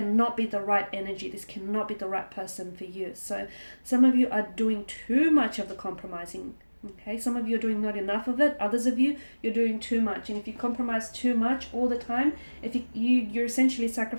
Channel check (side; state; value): both; inverted; correlation -1.00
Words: be the right energy. This cannot be the right person for you. So some of you are doing too much of the compromising. Okay, some of you are doing not enough of it. Others of you, you're doing too much. And if you compromise too much all the time, if you're essentially